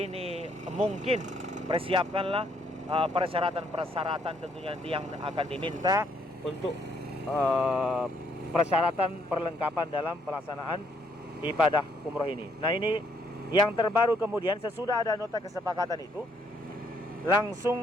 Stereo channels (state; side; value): normal; both; correlation 0.69